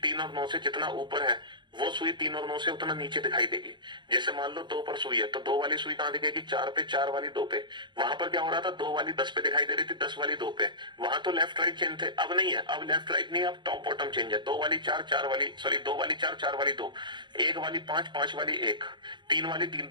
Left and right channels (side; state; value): left; late; 0.22 ms